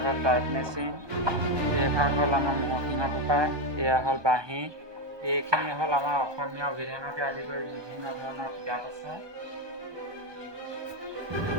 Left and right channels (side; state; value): left; late; 1.2 ms